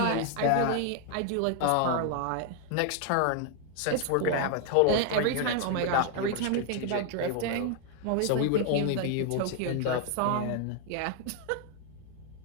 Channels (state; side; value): different; both; correlation 0.00